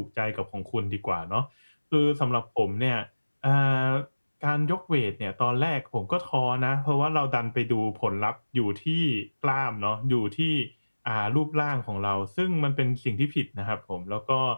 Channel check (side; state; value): both; inverted; correlation -1.00